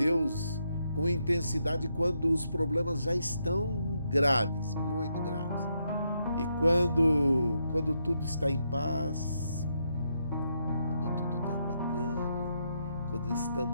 com intensidade quando os problemas já estão graves, muito graves? E quando tudo está em paz, quando tudo está bacana, quando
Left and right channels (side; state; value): both; inverted; correlation -0.79